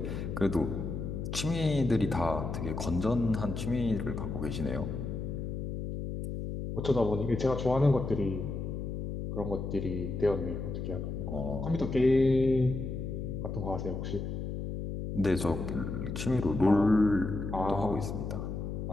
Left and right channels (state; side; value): noise; left; hum, 4 dB below the sound